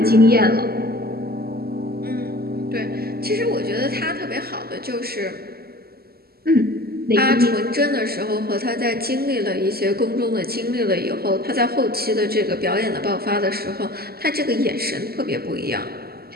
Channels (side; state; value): left; late; 0.45 ms